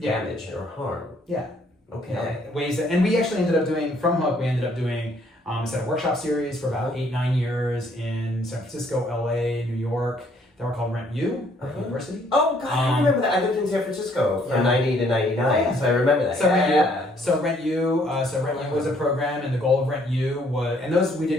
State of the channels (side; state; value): both; normal; correlation 0.65